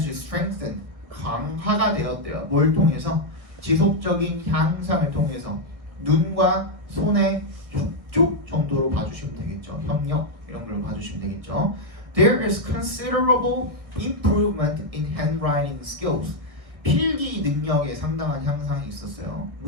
strengthened 강화가 되었대요. 뭘 통해서? 지속적인 향상을 통해서 눈과 손의 협조 정도로 봐주시면 되겠죠. 협력 이런 걸로 봐주시면 되겠죠. There is considerable improvement in handwriting skills. 필기 능력에 상당한 향상이 있었어요.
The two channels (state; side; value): late; left; 1.6 ms